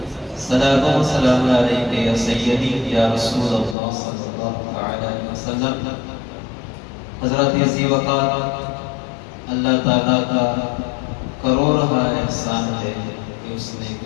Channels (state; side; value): drops out; right; at 3.8 s